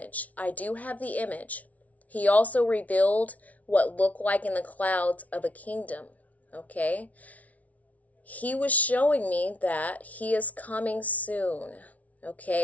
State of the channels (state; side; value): late; right; 0.070 ms